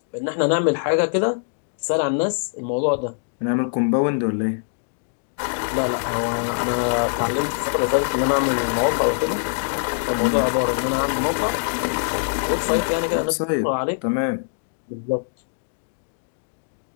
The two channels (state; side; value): silent; right; digital silence